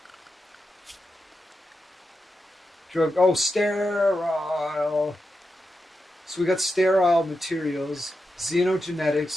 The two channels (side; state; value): both; normal; correlation 0.88